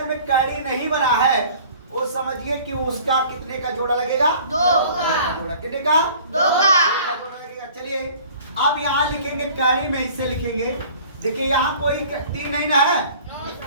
में कड़ी नहीं बना है वो समझिए कि उसका कितने का जोड़ा लगेगा? 2 का। कितने का? 2 का जोड़ा लगेगा। चलिए अब यहाँ लिखेंगे, कड़ी में इससे लिखेंगे। देखिए यहाँ कोई 3 नहीं ना है,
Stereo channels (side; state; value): both; inverted; correlation -0.48